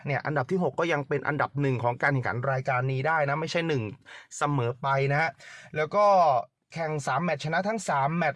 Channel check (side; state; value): both; identical; correlation 1.00